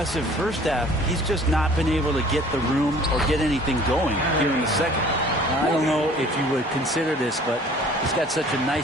first half, he's just not been able to get the room or get anything going here in the second. I don't know if you would consider this, but he's got such a nice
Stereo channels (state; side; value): normal; both; correlation 0.51